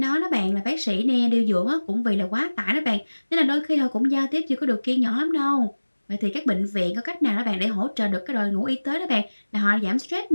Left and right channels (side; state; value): both; inverted; correlation -1.00